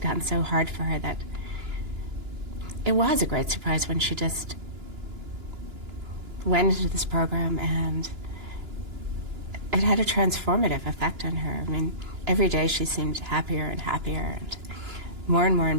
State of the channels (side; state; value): left; late; 2.9 ms